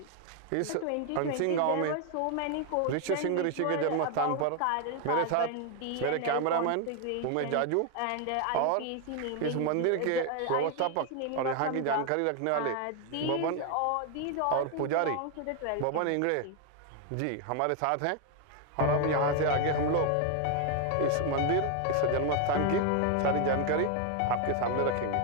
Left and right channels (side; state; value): both; different; correlation 0.01